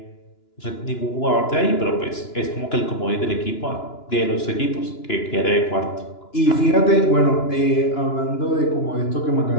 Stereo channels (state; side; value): late; right; 2.9 ms